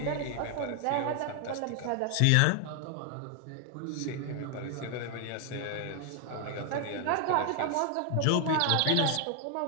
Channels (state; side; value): different; both; correlation 0.00